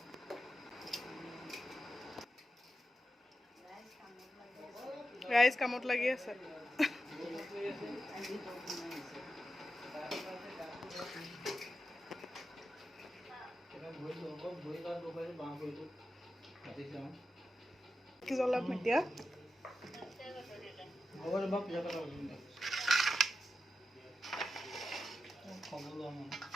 রাইস কামত লাগি আছে কি জ্বলাম এতিয়া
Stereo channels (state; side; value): normal; both; correlation 0.90